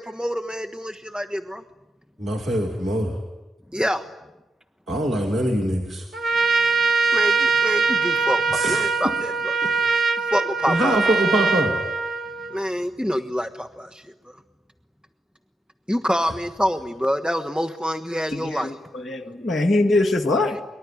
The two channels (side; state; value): both; normal; correlation 0.83